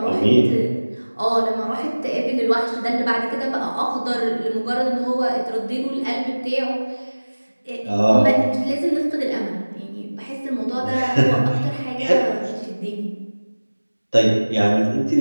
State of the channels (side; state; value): both; inverted; correlation -1.00